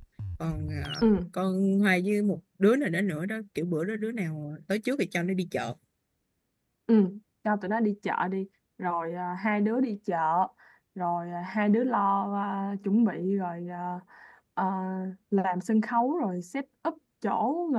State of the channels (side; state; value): both; identical; correlation 1.00